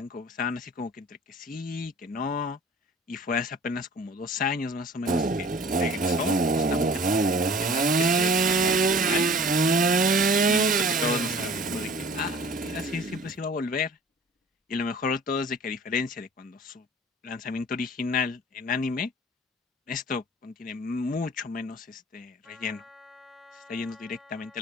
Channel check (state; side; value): normal; both; correlation 0.47